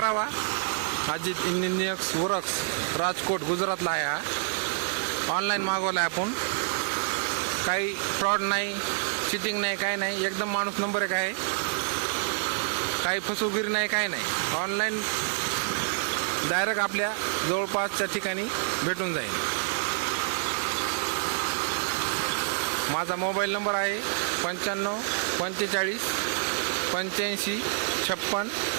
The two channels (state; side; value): silent; left; 60 dB below the other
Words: अजित इंजिनियर्स वर्क्स राजकोट गुजरातला आहे। हा ऑनलाईन मागवला आहे आपण। काही फ्रॉड नाही, चिटिंग नाही, काय नाही। एकदम माणूस नंबर 1 आहे। काही फसवेगिरी नाही, काय नाही। ऑनलाईन डायरेक्ट आपल्या जवळपासच्या ठिकाणी भेटून जाईल। माझा मोबाईल नंबर आहे 95 45 85 56